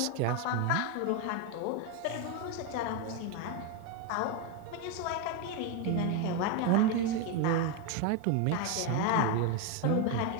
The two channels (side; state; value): both; different; correlation 0.02